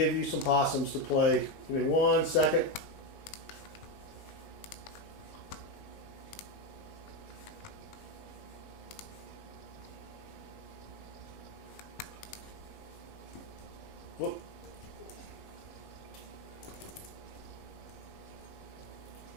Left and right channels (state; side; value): late; right; 19 ms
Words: you some possums to play. Give me 1 second. Whoop.